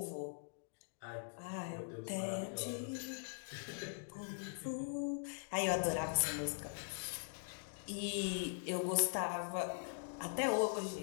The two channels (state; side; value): silent; right; digital silence